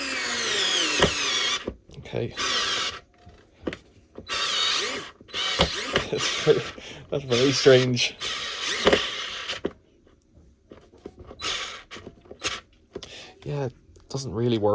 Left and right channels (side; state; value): both; identical; correlation 1.00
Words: Okay. That's very strange. Yeah, it doesn't really